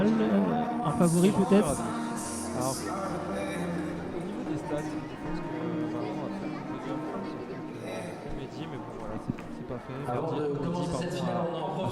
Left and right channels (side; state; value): both; identical; correlation 1.00